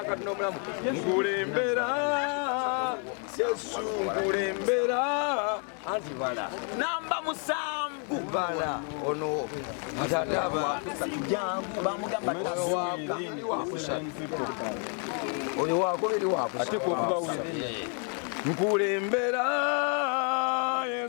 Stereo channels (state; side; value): quieter; right; 39.5 dB